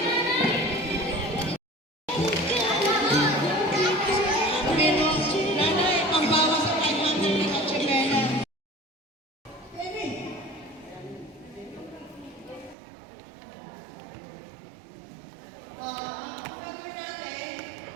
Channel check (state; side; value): drops out; left; at 12.8 s